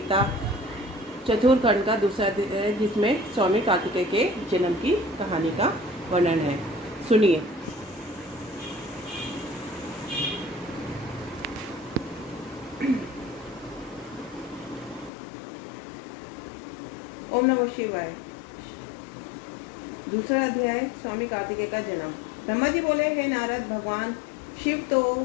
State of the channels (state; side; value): drops out; right; at 15.1 s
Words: चतुर्थखंड का दूसरा दिन है, जिसमें स्वामी कार्तिकेय के जन्म की कहानी का वर्णन है। सुनिए। ओम नमः शिवाय। दूसरा अध्याय, स्वामी कार्तिकेय का जन्म। ब्रह्मा जी बोले, हे नारद, भगवान शिव